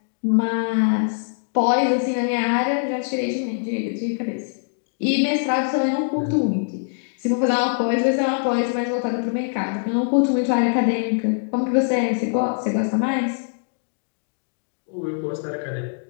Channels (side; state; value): right; silent; digital silence